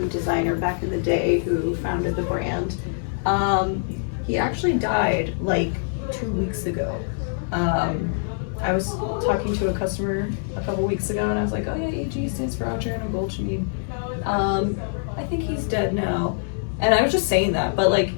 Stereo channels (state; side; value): silent; right; digital silence